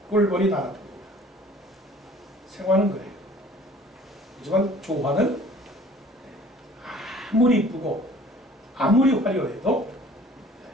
꿀벌이 날아듭니다. 생화는 그래요. 하지만 조화는 아무리 이쁘고 아무리 화려해도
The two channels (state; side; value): normal; both; correlation 0.51